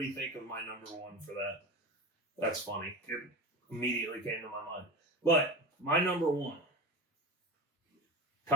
think of my number 1 for that. That's funny. It immediately came to my mind. But my number one,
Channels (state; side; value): normal; both; correlation 0.27